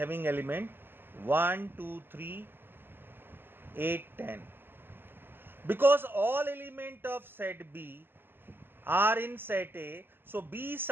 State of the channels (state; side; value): late; left; 0.099 ms